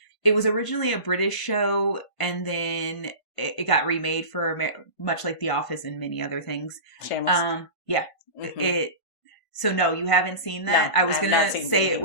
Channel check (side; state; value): right; late; 1.5 ms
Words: was originally a British show, and then it got remade for much like The Office and many other things. Shameless. Yeah. Mm-hmm. So no, you haven't seen that? No, I was gonna say it